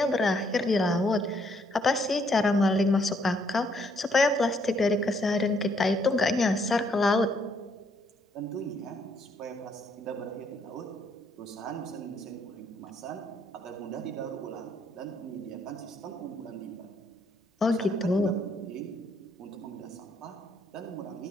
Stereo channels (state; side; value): normal; both; correlation 0.70